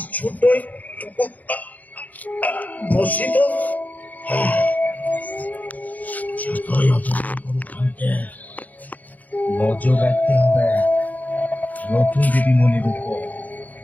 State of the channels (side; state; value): right; late; 0.079 ms